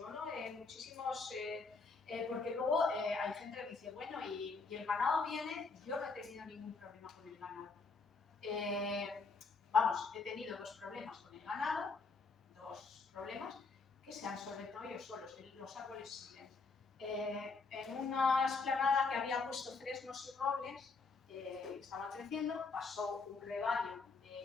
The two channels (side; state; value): right; quieter; 4.3 dB